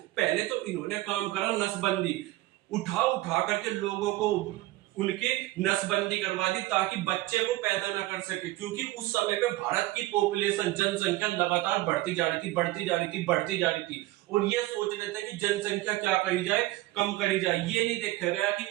पहले तो इन्होंने काम करा नसबंदी, उठा उठा करके लोगों को उनके नसबंदी करवा दी ताकि बच्चे को पैदा ना कर सके, क्योंकि उस समय पे भारत की पॉपुलेशन जनसंख्या लगातार बढ़ती जा रही थी, बढ़ती जा रही थी, बढ़ती जा रही थी। और ये सोच रहे थे कि जनसंख्या क्या करी जाए, कम करी जाए। ये नहीं देखा गया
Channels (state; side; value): quieter; left; 17.8 dB